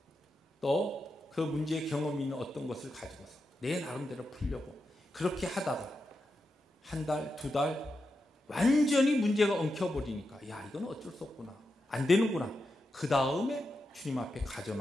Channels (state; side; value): normal; both; correlation 0.87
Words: 또 그 문제의 경험이 있는 어떤 것을 가지고서 내 나름대로 풀려고 그렇게 하다가 한 달, 두 달 완전히 문제가 엉켜버리니까 야 이건 어쩔 수 없구나. 안 되는구나. 그 다음에 주님 앞에